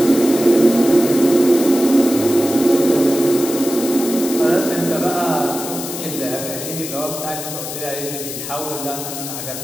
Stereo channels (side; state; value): left; noise; hiss, 8 dB below the sound